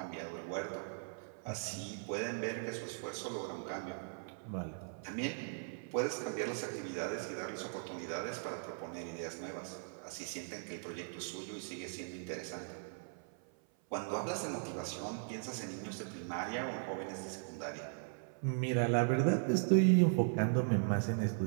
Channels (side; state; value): left; silent; 52 dB below the other